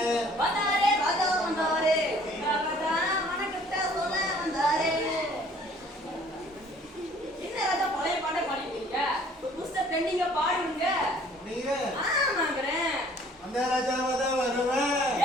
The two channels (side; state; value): both; normal; correlation 0.56